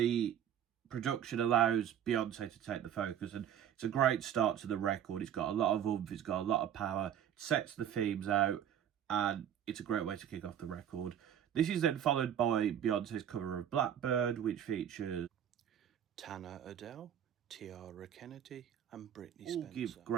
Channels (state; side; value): quieter; left; 9.7 dB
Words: production allows Beyonce to take the focus, and it's a great start to the record. It's got a lot of oomph, it's got a lot of power, it sets the themes out, and it's a great way to kick off the record. This is then followed by Beyonce's cover of Blackbird, which features Tana Adele, Tiara Kennedy and Britney all Spencer. give